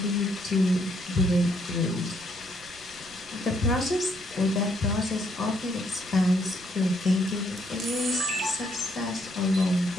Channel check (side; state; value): right; noise; rumble, 24 dB below the sound